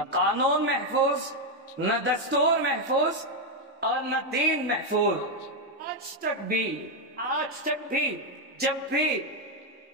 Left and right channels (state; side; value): normal; both; correlation 0.03